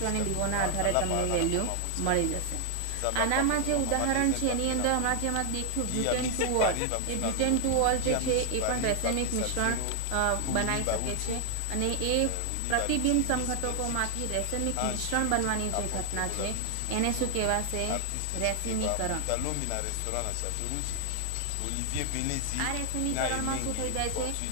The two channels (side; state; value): both; different; correlation 0.00